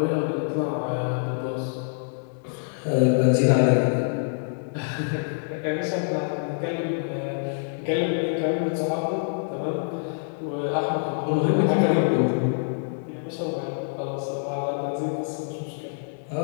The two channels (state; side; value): silent; right; digital silence